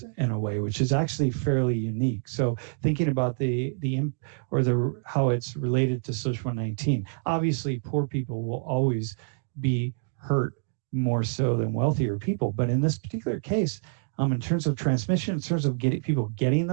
in a way, which is actually fairly unique. So thinking about how it's related to social 19, obviously poor people will always be hurt more so than wealthier people. But in this particular case, in terms of transmission, in terms of people getting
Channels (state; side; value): silent; left; digital silence